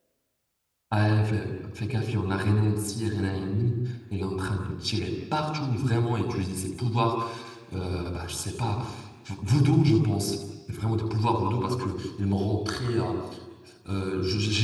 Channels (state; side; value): identical; both; correlation 1.00